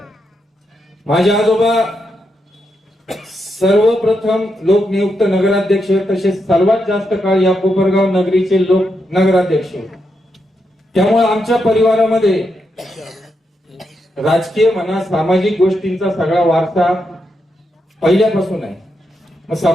माझे आजोबा सर्वप्रथम लोकनियुक्त नगराध्यक्ष, तसेच सर्वात जास्त काळ या कोपरगाव नगरीचे लोक नगराध्यक्ष. त्यामुळे आमच्या परिवारामध्ये राजकीय म्हणा, सामाजिक गोष्टींचा सगळा वारसा पहिल्यापासून आहे. मग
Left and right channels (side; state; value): both; normal; correlation 0.83